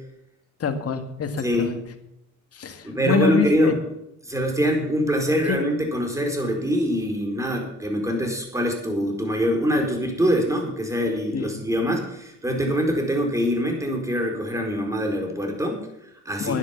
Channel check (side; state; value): both; normal; correlation 0.59